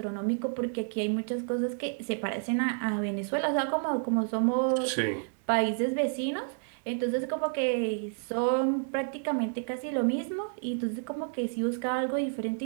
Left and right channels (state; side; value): silent; left; digital silence